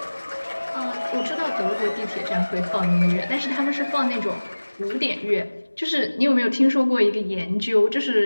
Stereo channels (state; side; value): inverted; both; correlation -1.00